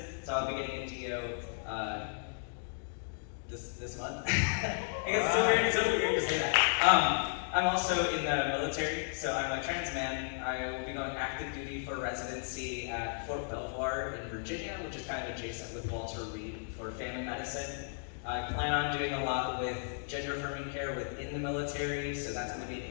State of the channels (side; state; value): right; silent; digital silence